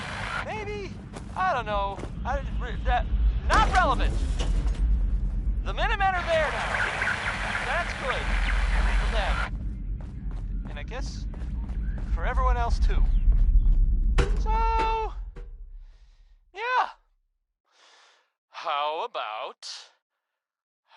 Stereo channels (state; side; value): identical; both; correlation 1.00